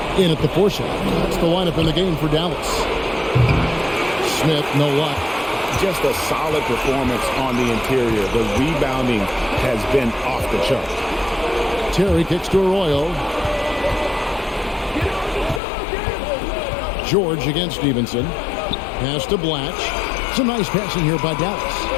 in at the 4 shot. That's the lineup in the game for Dallas. Smith, no luck. Just a solid performance on the interior. The rebounding has been off the chart. Terry kicks to Arroyo. George against Stevenson. Pass to Blatch. Some nice passing here by Dallas.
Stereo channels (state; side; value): drops out; right; at 15.6 s